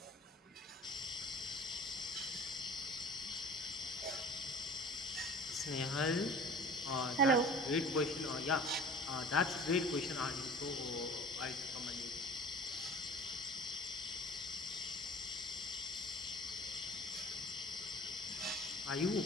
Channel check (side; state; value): both; normal; correlation 0.43